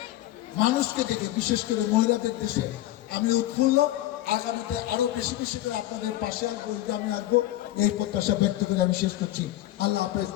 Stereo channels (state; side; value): quieter; right; 14.9 dB